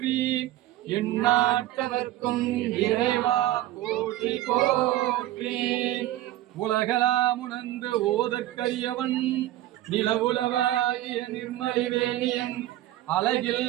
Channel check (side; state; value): left; quieter; 14.8 dB